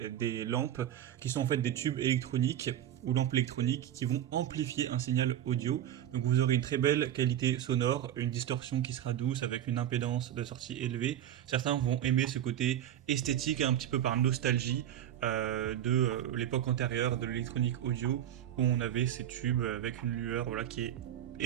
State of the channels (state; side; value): quieter; left; 11.1 dB